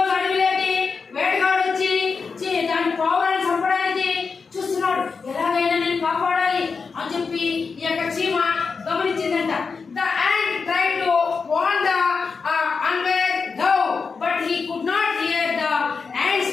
అడవిలోకి వేటగాడు వచ్చి దాని పావురాన్ని చంపడానికి చూస్తున్నాడు.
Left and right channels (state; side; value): quieter; right; 5.0 dB